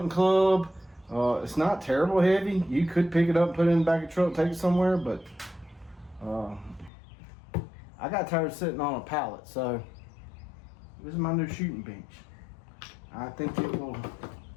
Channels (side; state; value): right; drops out; at 6.9 s